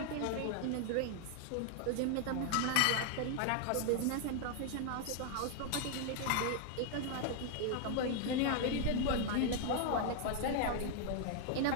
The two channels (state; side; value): different; both; correlation 0.00